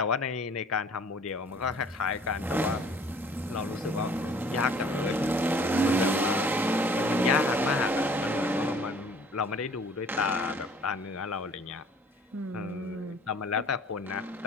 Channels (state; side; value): normal; both; correlation 0.53